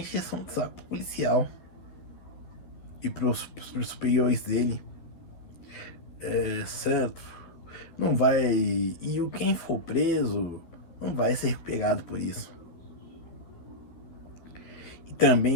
de saco policial e pros superiores dele, certo? Não vai. E quem for preso não vai ser pegado por isso. E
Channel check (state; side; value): late; right; 12 ms